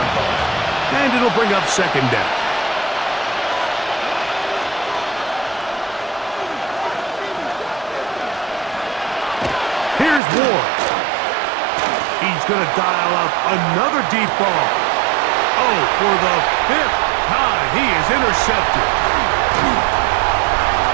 And it'll bring up 2nd down. Here's Ward. He's going to dial up another deep ball. Oh, for the 5th time, he is intercepted.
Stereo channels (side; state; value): left; drops out; at 10.2 s